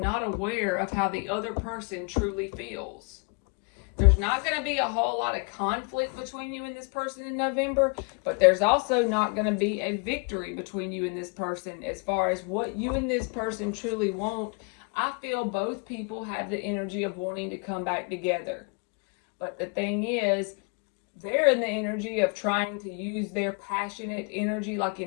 aware of how the other person truly feels. There's not going to be a whole lot of conflict between you and this person in November, but there's also not going to be a victory between you and this person as far as what you and this person truly want. I feel both people have the energy of wanting to come back together. But the thing is, they're in the energy of trying to use their passionate energy, like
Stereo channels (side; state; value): right; quieter; 35.5 dB